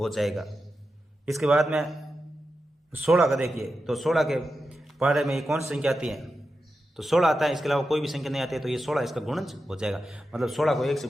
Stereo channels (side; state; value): both; normal; correlation 0.90